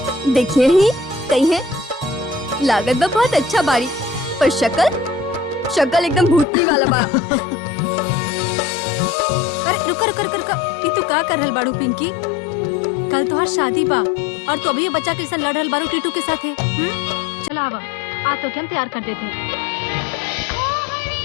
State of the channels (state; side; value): drops out; right; at 6.5 s